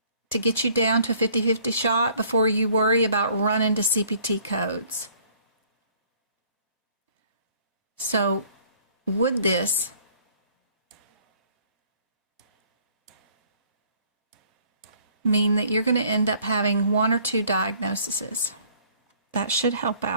to get you down to a 50-50 shot before you worry about running to CPT codes. So would this mean that you're going to end up having 1 or 2 diagnoses? That should help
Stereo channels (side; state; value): both; inverted; correlation -0.58